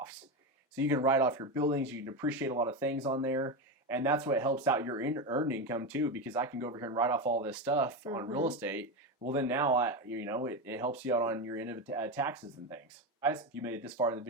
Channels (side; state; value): both; normal; correlation 0.15